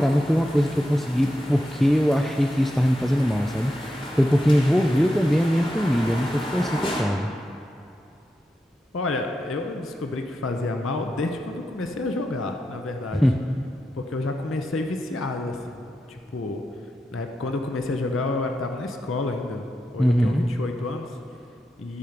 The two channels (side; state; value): both; normal; correlation 0.88